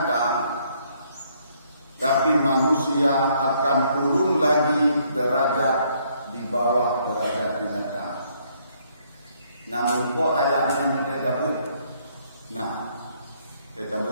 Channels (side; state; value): both; inverted; correlation -0.68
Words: tapi manusia akan turun lagi derajat di bawah derajat binatang. Namun kok ayatnya kita buat? Nah, kita